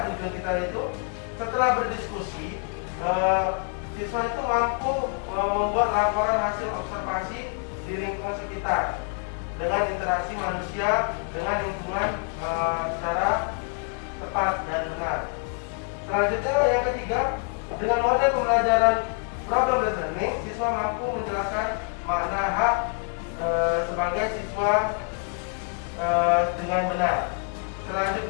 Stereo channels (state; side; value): quieter; right; 34.8 dB